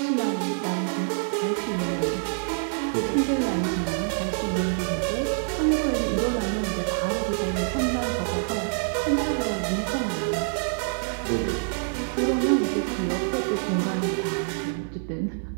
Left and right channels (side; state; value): left; silent; 57 dB below the other